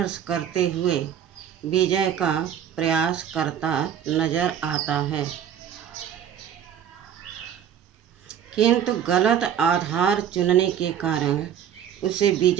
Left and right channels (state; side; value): quieter; left; 9.2 dB